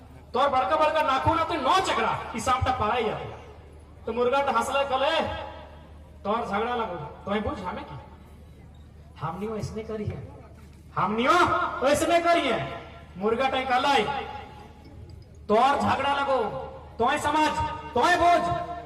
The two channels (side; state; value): both; identical; correlation 1.00